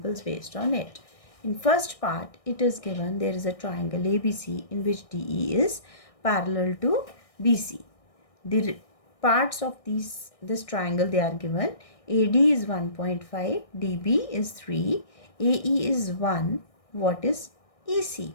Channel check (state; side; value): late; right; 1.6 ms